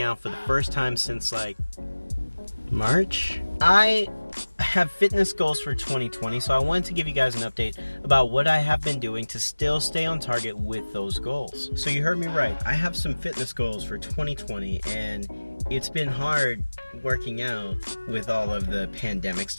out for the first time since March. I have fitness goals for 2020, so I wanted to give you guys an update about what I have been doing to still stay on target with those goals. So you heard me right. I have some fitness goals for 2020, and it's been hard working out with all of the pandemic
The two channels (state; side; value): inverted; both; correlation -1.00